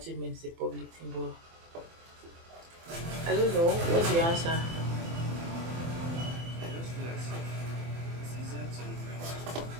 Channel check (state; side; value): late; left; 24 ms